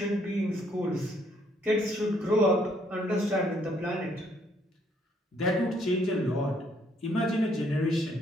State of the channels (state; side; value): normal; both; correlation 0.68